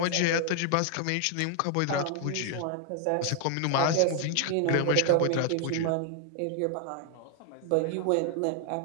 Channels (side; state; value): both; different; correlation 0.00